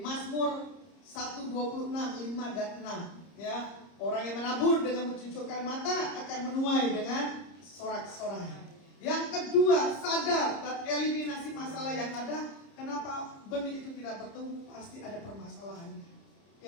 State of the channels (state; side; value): late; right; 30 ms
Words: Mazmur 1:26, 5 dan 6. Ya, orang yang menabur dengan mencucurkan mata akan menuai dengan sorak-sorai. Yang kedua, sadar dan eliminasi masalah yang ada. Kenapa benih itu tidak bertumbuh? Pasti ada permasalahannya.